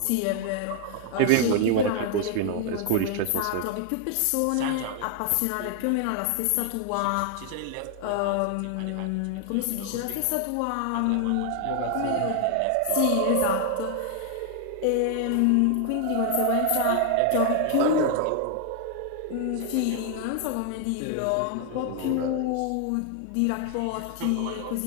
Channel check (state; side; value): different; both; correlation 0.00